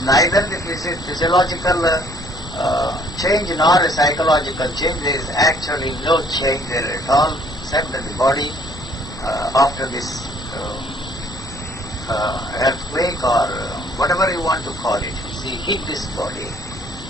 neither the physiological change nor a psychological change. There is actually no change there at all, except that the body after this earthquake or whatever you want to call it, see, hit this body.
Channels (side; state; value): both; normal; correlation 0.60